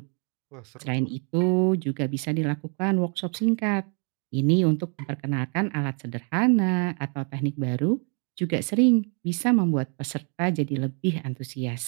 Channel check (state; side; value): quieter; left; 39.3 dB